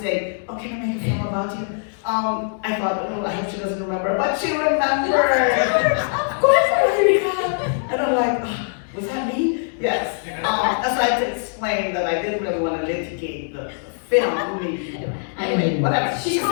saying, oh, can I make a film about you? I thought, I hope she doesn't remember, but she remembered. Of course I remember. And I'm like, was that me? Yes. So I had to explain that I didn't really want to litigate the film. Anyway, whatever. She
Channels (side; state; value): right; silent; digital silence